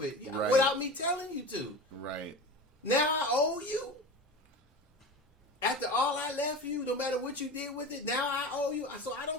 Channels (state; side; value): normal; both; correlation 0.30